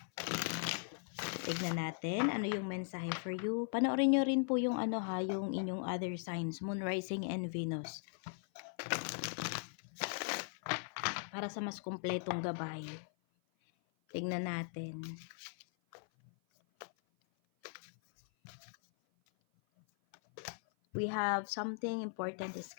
Tignan natin ano yung mensahe for you. Panoorin nyo rin po yung yung inyong other signs, Moon, Rising, and Venus. Para sa mas kumpletong gabay. Tignan natin. We have something important is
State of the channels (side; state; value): right; silent; 52 dB below the other